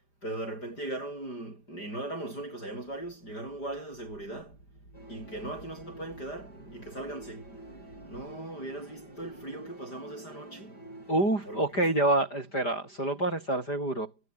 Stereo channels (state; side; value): late; right; 5.0 ms